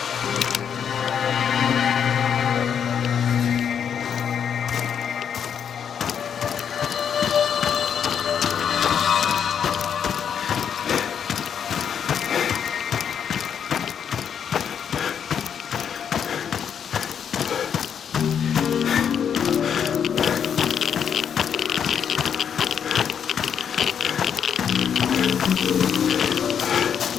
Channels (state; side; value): quieter; right; 7.9 dB